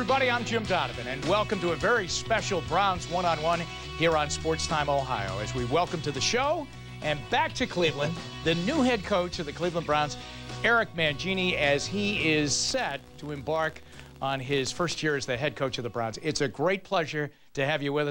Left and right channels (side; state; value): both; identical; correlation 1.00